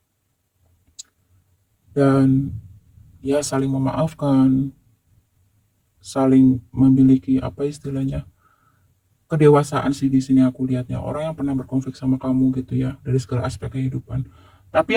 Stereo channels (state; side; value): identical; both; correlation 1.00